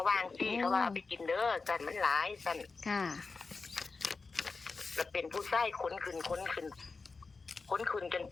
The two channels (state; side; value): quieter; right; 4.3 dB